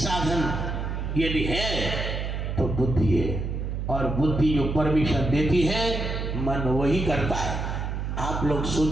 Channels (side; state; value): right; noise; hum, 3 dB below the sound